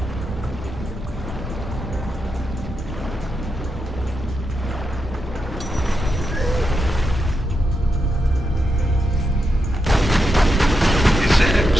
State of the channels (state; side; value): normal; both; correlation 0.85